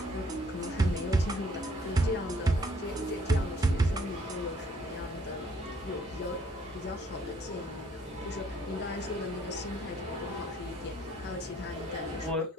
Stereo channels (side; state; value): both; normal; correlation 0.64